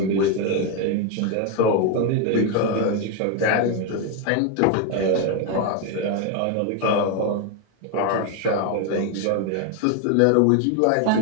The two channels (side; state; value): both; different; correlation 0.01